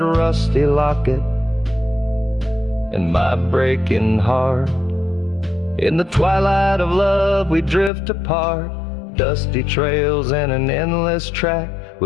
rusty locket and my breaking heart. In the twilight of love we drift apart. Dusty trails and an endless track.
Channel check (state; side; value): drops out; right; at 7.9 s